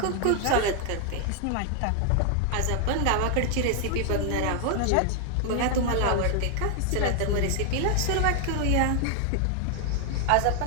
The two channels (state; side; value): different; both; correlation 0.00